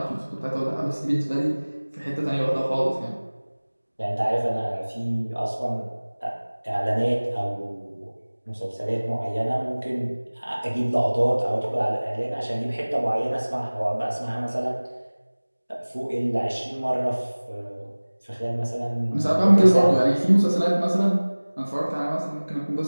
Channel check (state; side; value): inverted; both; correlation -1.00